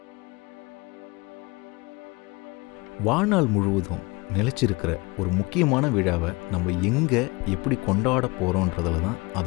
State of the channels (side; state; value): right; quieter; 25.4 dB